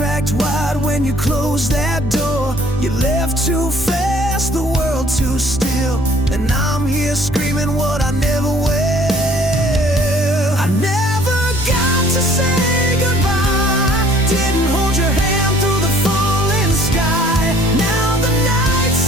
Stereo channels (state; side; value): normal; both; correlation 0.56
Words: wide when you closed that door. You left too fast, the world too still, and I'm here screaming what I never will. I never got to say goodbye. Didn't hold your hand through the falling sky. Now the night